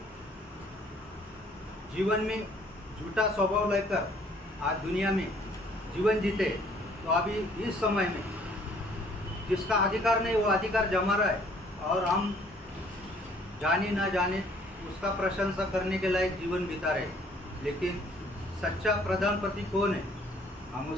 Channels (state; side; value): normal; both; correlation 0.60